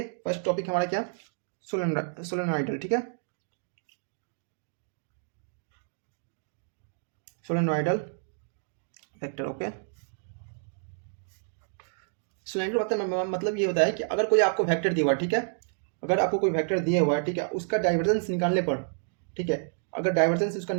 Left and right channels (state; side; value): silent; left; digital silence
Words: फर्स्ट टॉपिक हमारा क्या, solenoidal. ठीक है, solenoidal वेक्टर. ओके, सोलेनोइडल मतलब ये होता है कि अगर कोई आपको वेक्टर दिया हुआ है, ठीक है, अगर आपको कोई वेक्टर दिया हुआ है, ठीक है, उसका डाइवर्जेंस निकालने पर, ठीक है, अगर डाइवर्जेंस उसका